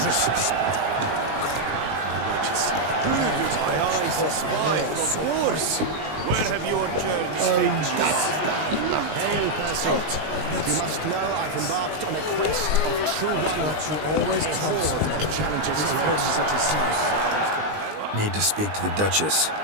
Need to speak to the Duchess,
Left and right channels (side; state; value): left; late; 20 ms